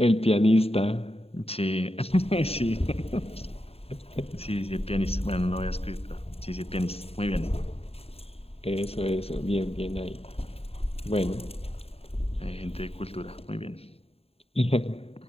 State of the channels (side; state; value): right; late; 0.29 ms